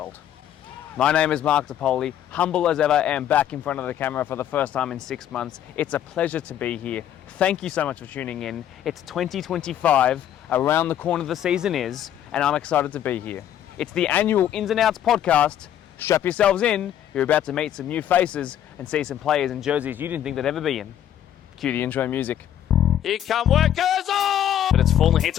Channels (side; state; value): right; quieter; 10.7 dB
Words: My name is Mark DePoli, humble as ever, and back in front of the camera for the first time in 6 months. It's a pleasure to be here. Thank you so much for tuning in. It's 2025, around the corner the season is, and I'm excited to be here. It's the annual Ins and Outs podcast. Strap yourselves in, you're about to meet some new faces and see some players in jerseys you didn't think they'd ever be in. Cue the intro music. Here come workers on! But it's fallen here